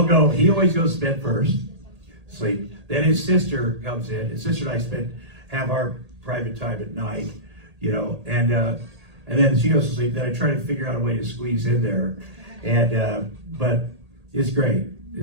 go. He always goes to bed first, sleep. Then his sister comes in. His sister and I have our private time at night, you know, and then she goes to sleep. Then I try to figure out a way to squeeze in there, and but it's great.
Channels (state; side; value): late; left; 1.8 ms